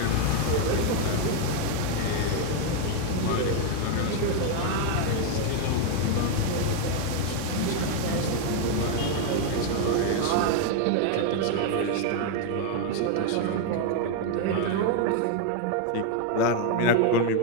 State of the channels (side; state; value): both; different; correlation 0.01